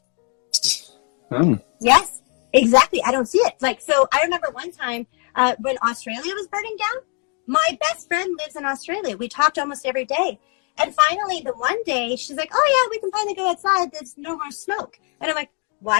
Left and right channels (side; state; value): right; quieter; 38.4 dB